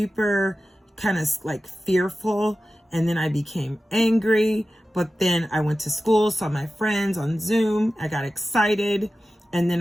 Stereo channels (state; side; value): normal; both; correlation 0.94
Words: kind of like fearful, and then I became angry, but then I went to school, saw my friends on Zoom, I got excited, and then